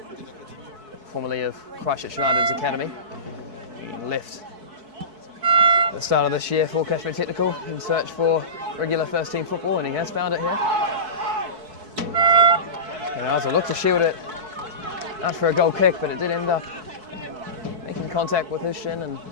formerly of Christchurch United's academy. He left at the start of this year for Cashmere Technical in search for regular first team football, and he has found it here. And Arthur looked to shield it out for a goal kick, but it did end up making contact with his shin and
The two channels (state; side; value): late; left; 4.6 ms